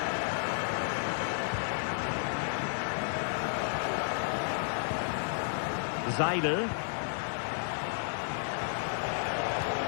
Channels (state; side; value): silent; right; digital silence